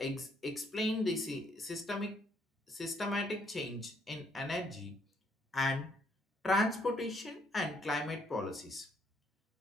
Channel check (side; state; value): both; normal; correlation 0.69